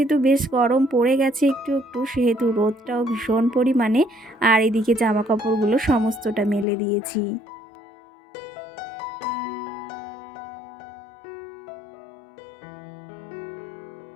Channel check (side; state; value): right; drops out; at 6.7 s